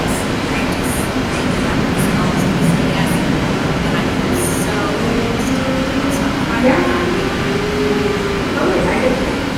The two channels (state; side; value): identical; both; correlation 1.00